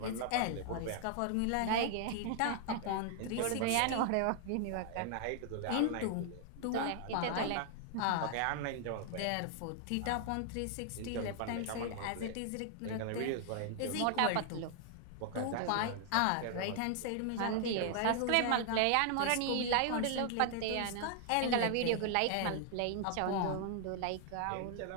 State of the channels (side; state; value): both; different; correlation 0.00